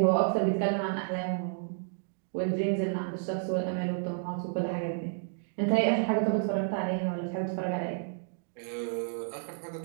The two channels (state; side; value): silent; left; digital silence